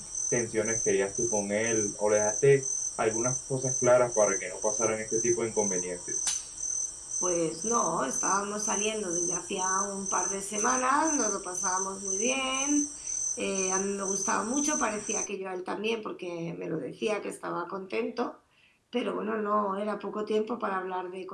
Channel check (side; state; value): both; identical; correlation 1.00